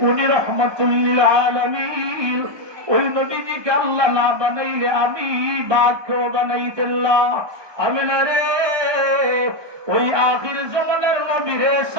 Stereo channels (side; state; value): left; late; 1.2 ms